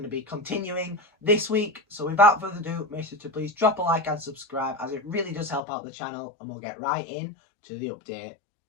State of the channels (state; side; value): drops out; right; at 5.6 s